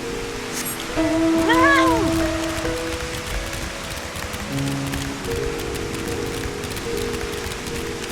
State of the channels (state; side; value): identical; both; correlation 1.00